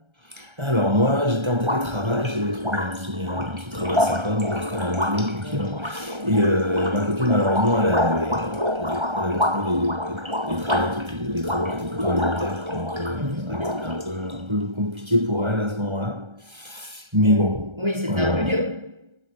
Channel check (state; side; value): late; left; 1.3 ms